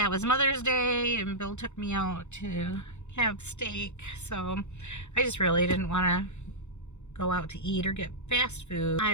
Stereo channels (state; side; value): late; right; 0.83 ms